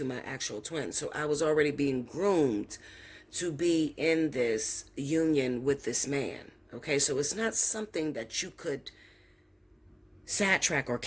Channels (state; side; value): identical; both; correlation 1.00